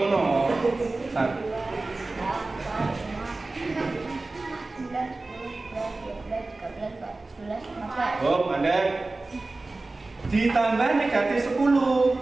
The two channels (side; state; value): left; quieter; 3.2 dB